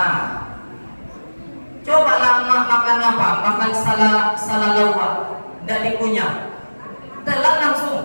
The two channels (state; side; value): inverted; both; correlation -1.00